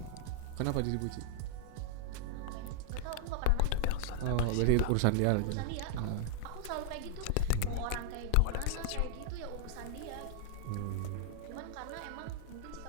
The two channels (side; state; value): both; different; correlation -0.01